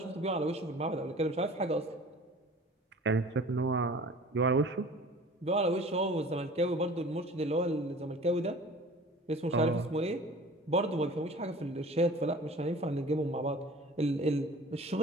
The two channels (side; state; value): both; normal; correlation 0.44